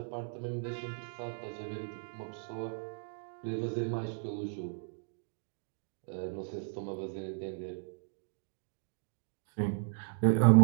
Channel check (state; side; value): silent; left; digital silence